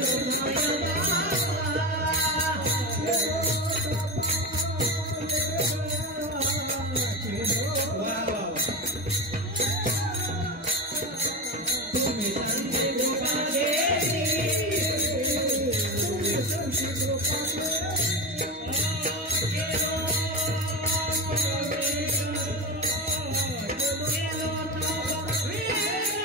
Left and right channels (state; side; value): normal; both; correlation 0.20